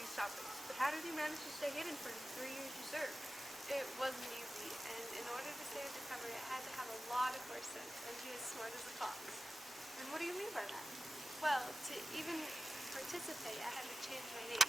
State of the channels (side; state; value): both; normal; correlation 0.94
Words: topics, but how did you manage to stay hidden for the 3 years you served? It wasn't easy, and in order to stay undercover, I had to have a lot of horse sense and be as smart as a fox. And what do you mean by that? Well, to even participate, I had to change my name.